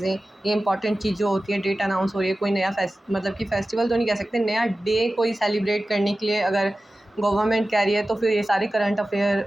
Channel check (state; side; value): normal; both; correlation 0.95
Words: ये इंपॉर्टेंट चीज़ जो होती है, डेट अनाउंस हो रही है, कोई नया मतलब कि फेस्टिवल तो नहीं कह सकते, नया डे कोई सेलिब्रेट करने के लिए अगर गवर्नमेंट कह रही है तो फिर ये सारे करंट अफेयर